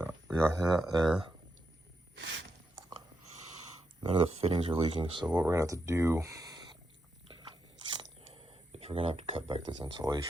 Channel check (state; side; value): normal; both; correlation 0.83